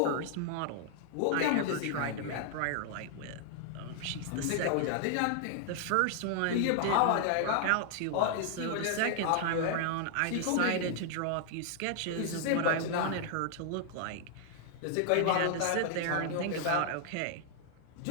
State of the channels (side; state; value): both; different; correlation -0.01